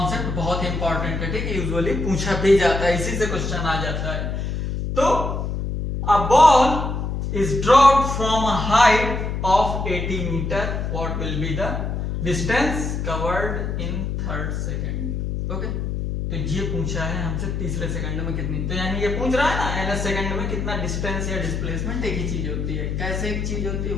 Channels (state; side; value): noise; left; hum, 2 dB below the sound